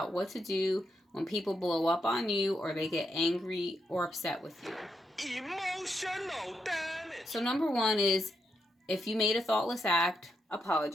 what to do when people blow up on you or they get angry or upset with you. Emotional damage. So number 1 is, if you made a thoughtless act,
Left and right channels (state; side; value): normal; both; correlation 0.81